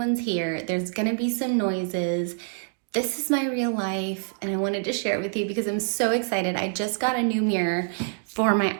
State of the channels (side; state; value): left; silent; 61 dB below the other